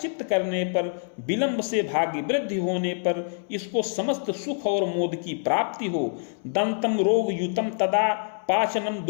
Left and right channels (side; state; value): right; silent; 61 dB below the other